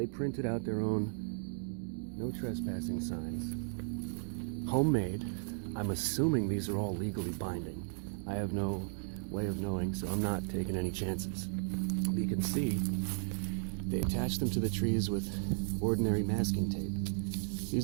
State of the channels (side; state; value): left; silent; digital silence